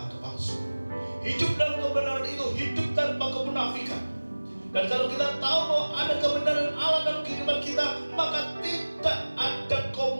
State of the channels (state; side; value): inverted; both; correlation -1.00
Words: kepalsuan. Hidup dalam kebenaran itu hidup tanpa kemunafikan. Dan kalau kita tahu bahwa ada kebenaran Allah dalam kehidupan kita, maka tidak ada